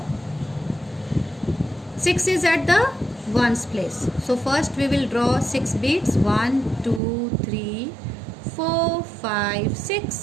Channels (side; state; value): left; drops out; at 7.0 s